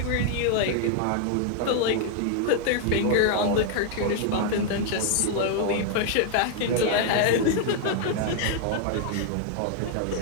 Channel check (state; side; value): different; both; correlation 0.00